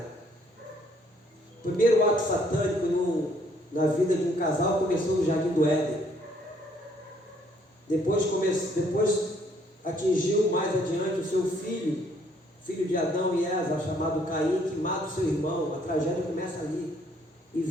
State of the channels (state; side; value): normal; both; correlation 0.65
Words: O primeiro ato satânico na vida de um casal começou no Jardim do Éden. Depois atingiu mais adiante o seu filho de Adão e Eva, chamado Caim, que mata o seu irmão. A tragédia começa ali e